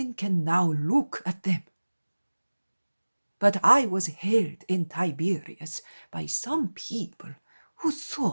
can now look at them. But I was held in Tiberias by some people who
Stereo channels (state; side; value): inverted; both; correlation -1.00